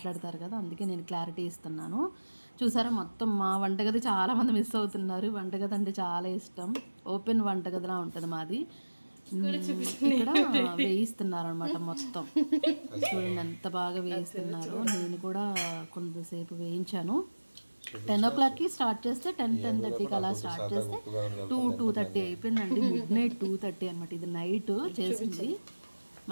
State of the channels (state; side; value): inverted; both; correlation -1.00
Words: కదా, అందుకే నేను క్లారిటీ ఇస్తున్నాను. చూసారా, మొత్తం మా వంటగది చాలామంది మిస్ అవుతున్నారు. వంటగది అంటే చాలా ఇష్టం, ఓపెన్ వంటగదిలా ఉంటుంది మాది. ఇక్కడ వేయిస్తున్నారు అనమాట మొత్తం. చూడండి ఎంత బాగా వేయిస్తున్నారు. నేను కూడా కొంతసేపు వేయించాను. 10 o'clockకి స్టార్ట్ చేస్తే 10-10:30కి అలా స్టార్ట్ చేస్తే 2-2:30 అయిపోయిందండి. మిడ్నైట్ 2:30 అనమాట. ఇది నైట్ చేసింది.